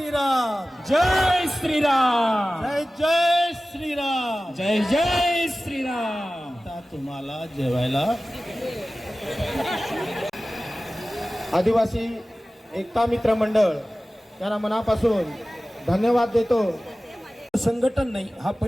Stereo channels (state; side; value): normal; both; correlation 0.96